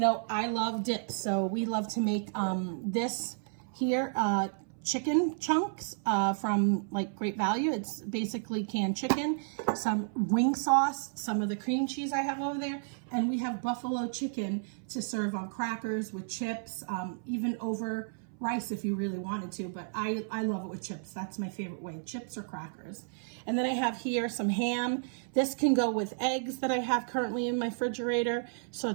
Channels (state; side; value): silent; left; 56 dB below the other